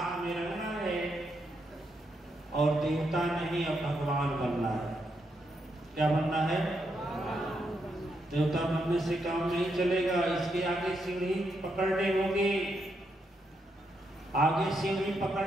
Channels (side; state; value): both; normal; correlation 0.80